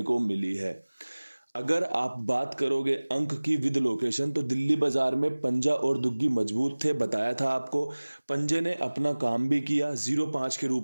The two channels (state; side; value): inverted; both; correlation -1.00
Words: को मिली है। अगर आप बात करोगे अंक की विद लोकेशन, तो दिल्ली बाजार में पंजा और दुग्गी मजबूत थे। बताया था आपको, पंजे ने अपना काम भी किया। 05 के